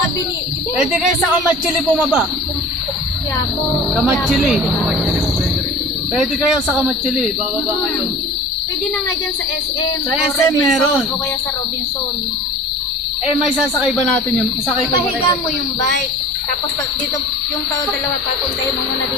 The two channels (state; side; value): normal; both; correlation 0.40